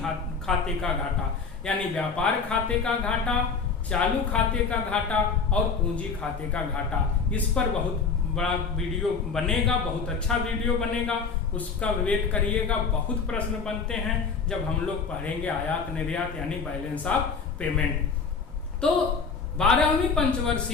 खाते का घाटा। यानी व्यापार खाते का घाटा, चालू खाते का घाटा और पूंजी खाते का घाटा। इस पर बहुत बड़ा वीडियो बनेगा, बहुत अच्छा वीडियो बनेगा, उसका वेट करिएगा। बहुत प्रश्न बनते हैं जब हम लोग पढ़ेंगे आयात निर्यात यानी बैलेंस ऑफ पेमेंट। तो 12वीं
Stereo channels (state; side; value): quieter; right; 5.3 dB